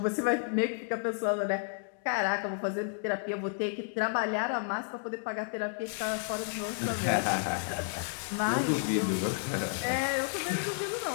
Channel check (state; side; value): silent; right; digital silence